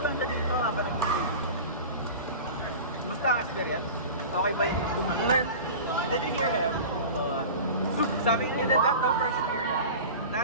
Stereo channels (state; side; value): inverted; both; correlation -0.34